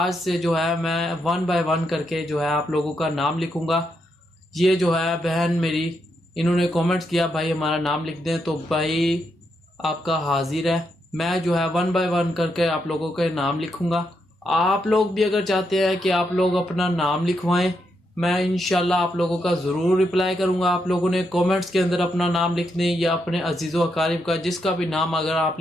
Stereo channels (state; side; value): normal; both; correlation 0.81